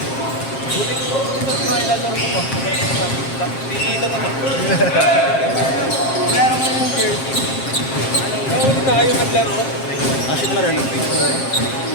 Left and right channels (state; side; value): late; right; 7.5 ms